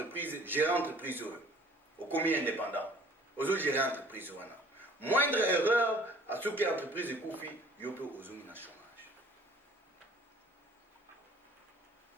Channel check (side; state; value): both; normal; correlation 0.53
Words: gérer entreprise oyo okomi indépendant ozo gérer entreprise wana moindre erreur asoki entreprise ekufi yo mpe ozongi na chômage.